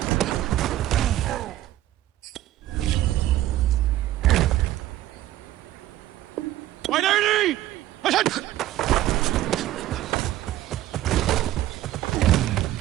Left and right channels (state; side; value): quieter; left; 14.3 dB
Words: White 80! What's that?